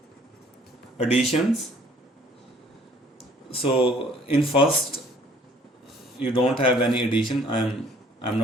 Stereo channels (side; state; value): both; normal; correlation 0.56